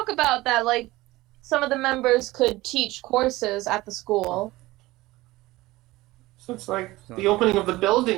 about that, like, some of the members could teach courses at the school. So it's like the opening of the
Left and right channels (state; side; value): quieter; left; 18.9 dB